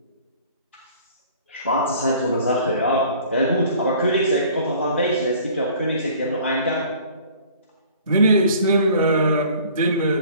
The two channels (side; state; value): both; inverted; correlation -0.51